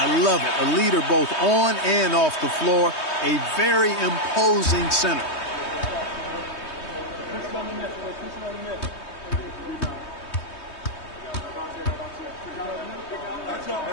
love it. A leader both on and off the floor. A very imposing center.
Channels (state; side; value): late; right; 3.2 ms